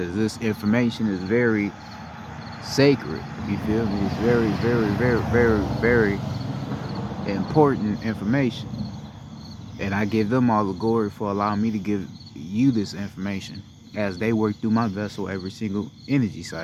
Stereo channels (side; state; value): both; identical; correlation 1.00